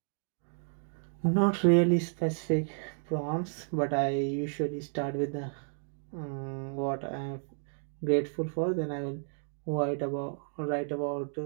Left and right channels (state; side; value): silent; left; digital silence